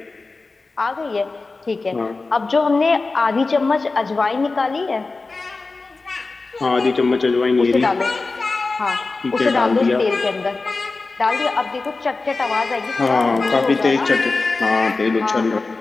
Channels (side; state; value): right; quieter; 3.7 dB